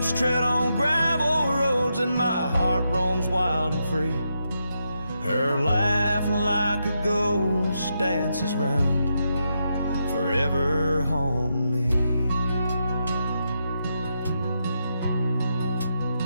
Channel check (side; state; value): both; inverted; correlation -0.83